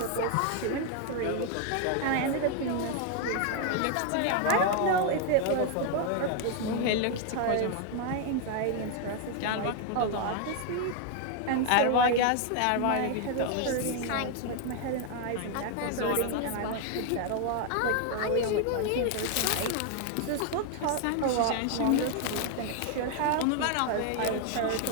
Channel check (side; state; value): both; different; correlation 0.00